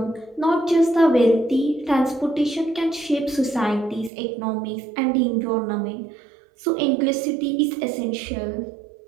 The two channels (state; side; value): drops out; left; at 4.1 s